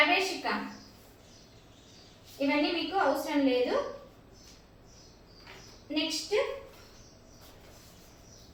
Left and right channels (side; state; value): both; identical; correlation 1.00